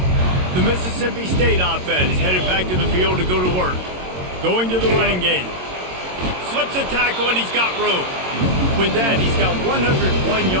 The Mississippi State offense headed back to the field to go to work. Going to the running game. Slips a tackle, and he's got room. With that, he's got 101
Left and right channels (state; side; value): late; left; 22 ms